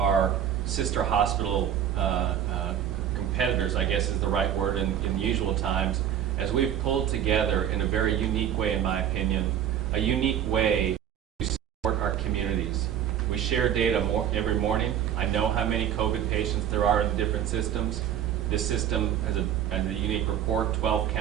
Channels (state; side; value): quieter; left; 9.9 dB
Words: sister hospital competitors, I guess is the right word in usual times, as we've pulled together in a very unique way, in my opinion, a unique way to support our communities. We share data every morning. I know how many COVID patients there are in the different systems. This system has a unique report. 12